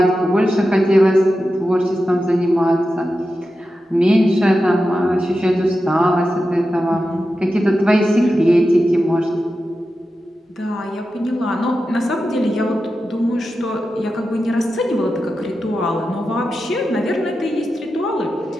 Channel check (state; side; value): normal; both; correlation 0.91